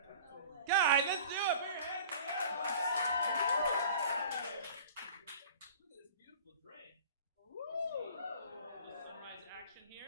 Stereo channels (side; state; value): both; inverted; correlation -0.43